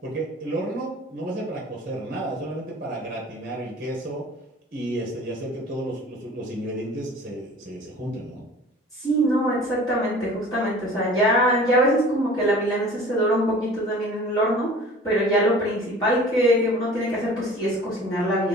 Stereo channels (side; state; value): both; normal; correlation 0.45